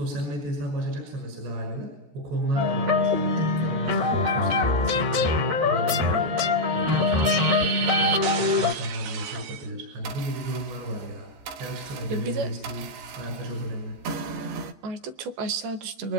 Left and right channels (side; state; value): left; late; 14 ms